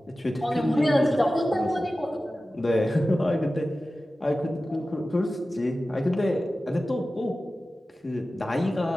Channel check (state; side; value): normal; both; correlation 0.95